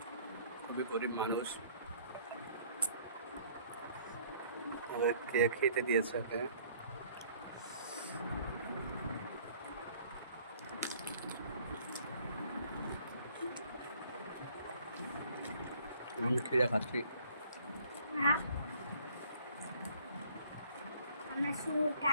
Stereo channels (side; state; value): both; inverted; correlation -0.58